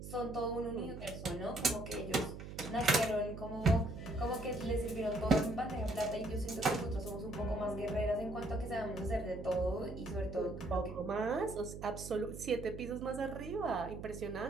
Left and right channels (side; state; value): right; noise; hum, 10 dB below the sound